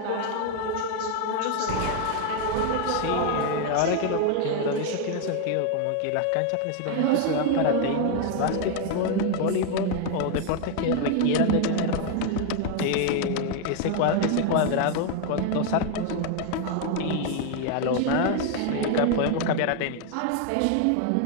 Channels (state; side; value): different; both; correlation 0.01